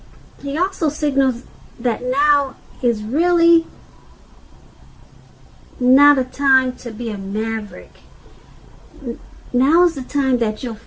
he also signals that now is really not a time to be a maverick. Now is the time that you'll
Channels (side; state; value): both; identical; correlation 1.00